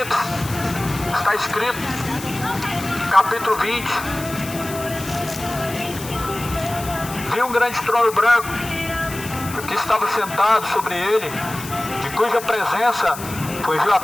está escrito, capítulo 20: vi um grande trono branco, que estava sentado sobre ele, de cuja presença fugiu a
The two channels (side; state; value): left; noise; hiss, 12 dB below the sound